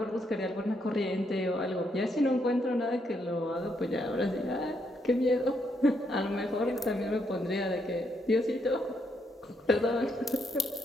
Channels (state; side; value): normal; both; correlation 0.77